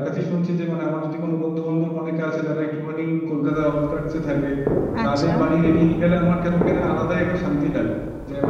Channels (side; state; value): both; identical; correlation 1.00